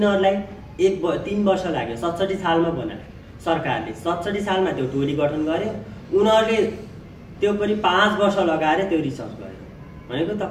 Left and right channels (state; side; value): identical; both; correlation 1.00